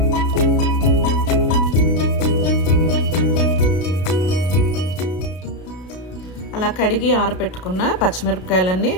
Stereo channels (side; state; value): right; late; 33 ms